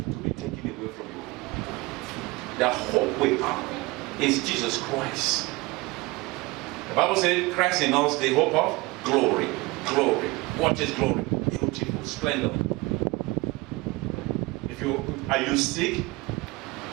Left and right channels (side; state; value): left; quieter; 23.0 dB